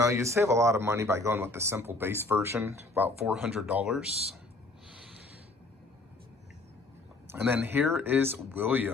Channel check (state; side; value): quieter; right; 3.1 dB